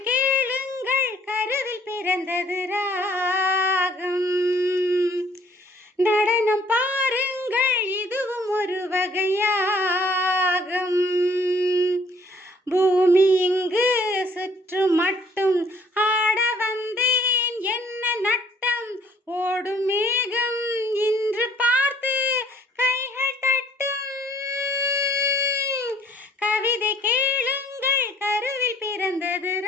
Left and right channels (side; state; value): both; normal; correlation 0.60